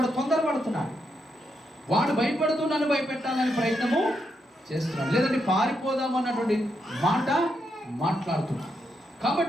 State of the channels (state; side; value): normal; both; correlation 0.81